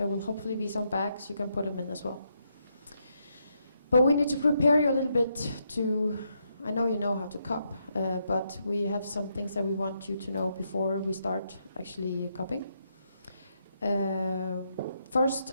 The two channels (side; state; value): both; inverted; correlation -0.79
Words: will hopefully be some bags you can put them in as well. But we need to prepare you a little bit to, I know you know how to cup, but we have some things that we want you to know before we start actually cupping. First,